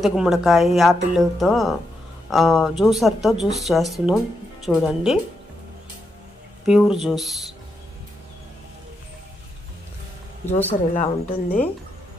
గుమ్మడికాయ, యాపిల్తో జ్యూసర్తో జ్యూస్ చేస్తున్నాం. చూడండి, ప్యూర్ జ్యూసర్ ఇలా ఉంటుంది.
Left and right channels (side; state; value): both; normal; correlation 0.83